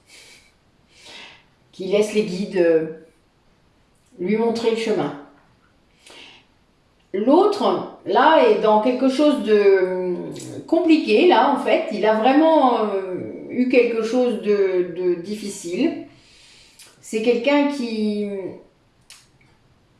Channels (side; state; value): both; identical; correlation 1.00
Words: qui laisse les guides lui montrer le chemin. L'autre, là, est dans quelque chose de compliqué, là, en fait. Il a vraiment eu quelque chose de difficile. C'est quelqu'un qui